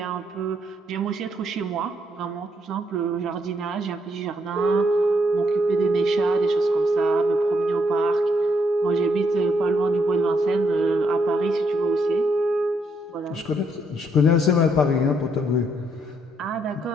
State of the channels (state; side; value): normal; both; correlation 0.74